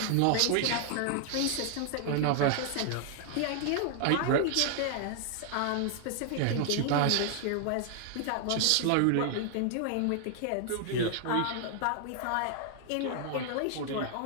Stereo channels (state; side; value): different; both; correlation 0.00